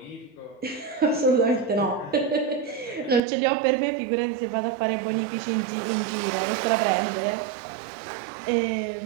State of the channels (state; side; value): drops out; left; at 3.2 s